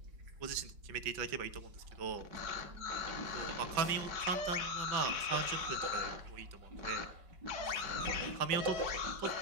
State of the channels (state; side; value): late; left; 5.3 ms